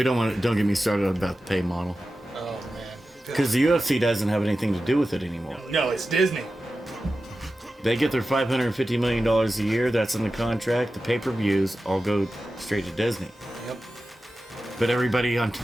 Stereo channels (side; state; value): both; normal; correlation 0.93